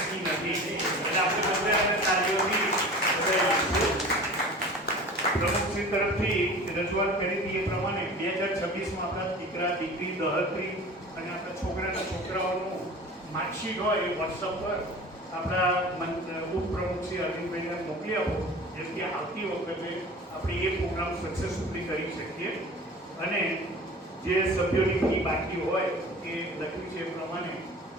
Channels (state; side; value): normal; both; correlation 0.39